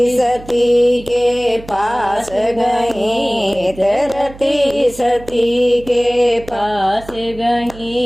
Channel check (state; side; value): noise; right; hum, 18 dB below the sound